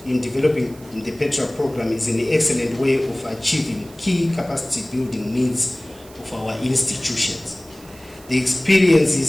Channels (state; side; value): noise; right; hiss, 23 dB below the sound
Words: in developing the PETRA program is an excellent way of achieving key capacity building needs of our institutions. The